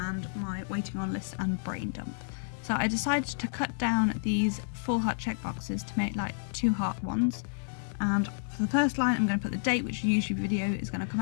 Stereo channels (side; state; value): right; silent; digital silence